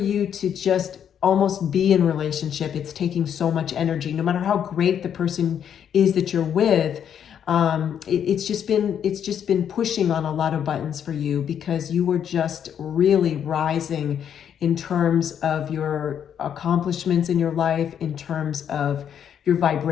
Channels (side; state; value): right; quieter; 8.8 dB